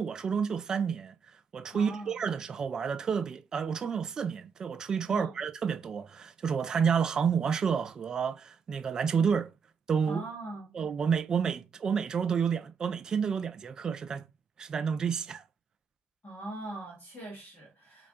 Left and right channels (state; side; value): quieter; left; 6.2 dB